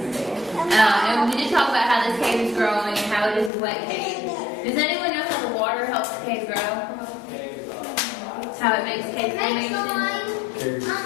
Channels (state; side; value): drops out; right; at 3.5 s